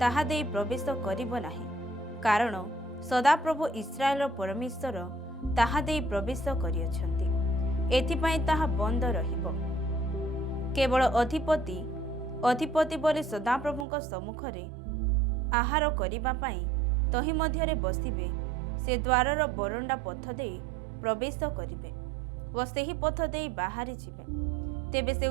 ଦେଇ ପ୍ରବେଶ କରିବ ନାହିଁ, କାରଣ ସଦାପ୍ରଭୁ ଇସ୍ରାଏଲର ପରମେଶ୍ୱର ତାହା ଦେଇ ପ୍ରବେଶ କରିଅଛନ୍ତି। ଏଥିପାଇଁ ତାହା ବନ୍ଦ ରହିବ। କେବଳ ଅଧିପତି ବୋଲି ସଦାପ୍ରଭୁଙ୍କ ସମ୍ମୁଖରେ ଆହାର କରିବା ପାଇଁ ତହିଁ ମଧ୍ୟରେ ବସିବେ। ସେ ଦ୍ୱାରର ବରଣ୍ଡା ପଥ ଦେଇ ପ୍ରବେଶ କରିବେ ଓ ସେହି ପଥ ଦେଇ ବାହାରି ଯିବେ। ତେବେ ସେ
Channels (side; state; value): left; drops out; at 13.9 s